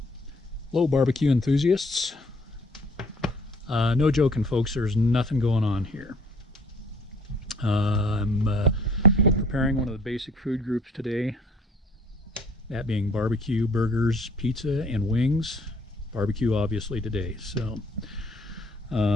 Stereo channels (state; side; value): normal; both; correlation 0.57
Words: Hello, barbecue enthusiasts. No joking, folks, there's nothing going on here. I'm preparing one of the basic food groups today, that being barbecue, burgers, pizza, and wings. Barbecue, obviously, today. So,